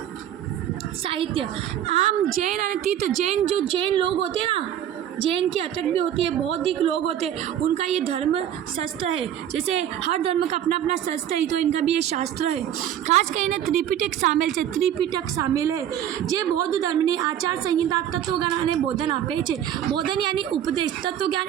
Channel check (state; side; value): quieter; left; 10.6 dB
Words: साहित्य, आम जैन और तीर्थ, जैन लोग होते हैं ना, जैन की अटक भी होती है, बौद्धिक लोग होते हैं, उनका ये धर्म शास्त्र है। जैसे हर धर्म का अपना अपना शास्त्र है, तो इनका भी ये शास्त्र है। खास કરીને त्रिपिटक सामेल है। जे बौद्ध धर्मની आचार संहिता, तत्वज्ञान અને बोधन આપે છે। बोधन यानी उपदेश, तत्वज्ञान